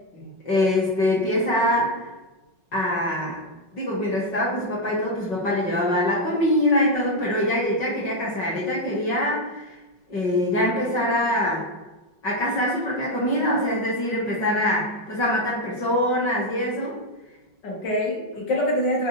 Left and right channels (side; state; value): right; late; 5.4 ms